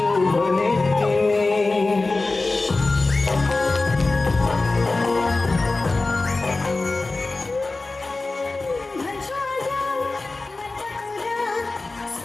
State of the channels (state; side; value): quieter; right; 3.4 dB